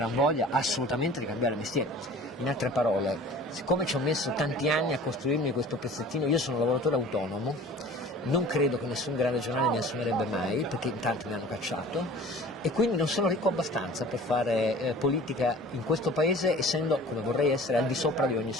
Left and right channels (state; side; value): normal; both; correlation 0.45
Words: voglia assolutamente di cambiare mestiere. In altre parole, siccome ci ho messo tanti anni a costruirmi questo pezzettino, io sono un lavoratore autonomo, non credo che nessun grande giornale mi assumerebbe mai, perché in tanti mi hanno cacciato, e quindi non sono ricco abbastanza per fare politica in questo paese, essendo, come vorrei essere, al di sopra di ogni